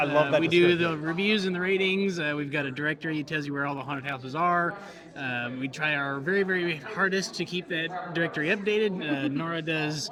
love that We do description. the reviews and the ratings. We've got a directory that tells you where all the haunted houses are. We try our very, very hardest to keep that directory updated. Nora does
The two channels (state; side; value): identical; both; correlation 1.00